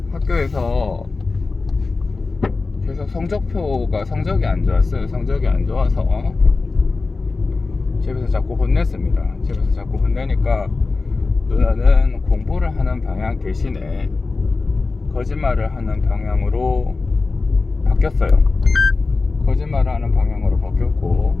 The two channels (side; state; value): right; quieter; 3.9 dB